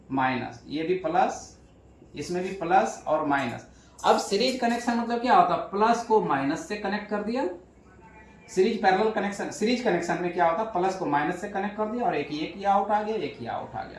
माइनस, ये भी प्लस, इसमें भी प्लस और माइनस। अब सीरीज कनेक्शन मतलब क्या होता है, प्लस को माइनस से कनेक्ट कर दिया। Series parallel connection, series connection में क्या होता है, प्लस को माइनस से कनेक्ट कर दिया और एक ये आउट आ गया, एक ये आउट आ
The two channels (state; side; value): identical; both; correlation 1.00